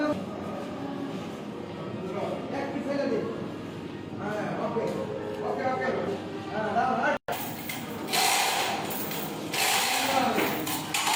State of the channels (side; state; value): both; identical; correlation 1.00